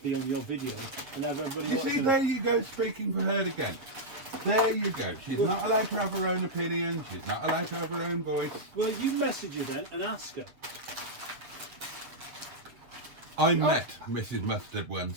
on your video and have everybody You watching see, it. there you go, speaking for her again. There you go. She's not allowed to have her own opinion. She's not allowed to have her own voice. Well, you message her then and ask her. I met Mrs. Mustard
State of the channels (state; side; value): late; left; 7.5 ms